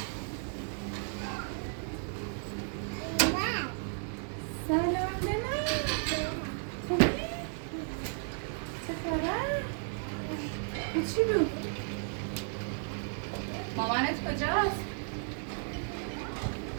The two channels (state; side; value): silent; left; 55 dB below the other